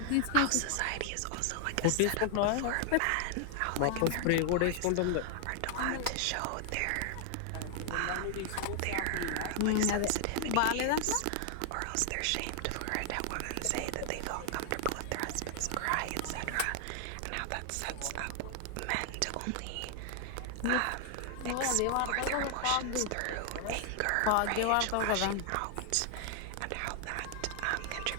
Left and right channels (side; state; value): both; different; correlation 0.00